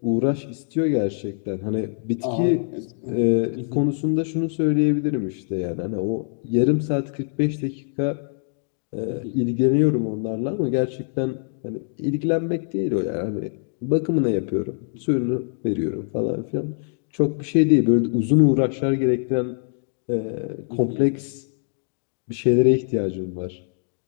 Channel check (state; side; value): silent; right; digital silence